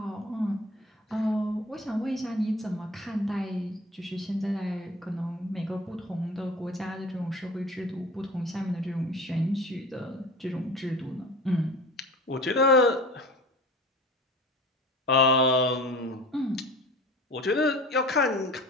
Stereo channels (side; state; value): both; normal; correlation 0.39